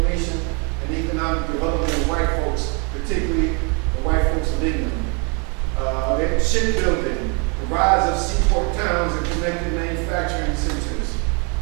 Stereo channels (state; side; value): quieter; left; 34.5 dB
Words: and economic development of white folks, particularly the white folks of England. Shipbuilding, the rise of seaport towns and connected manufacturing centers.